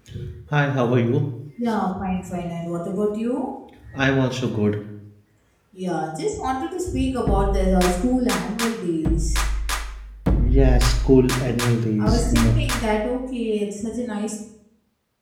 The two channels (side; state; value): both; identical; correlation 1.00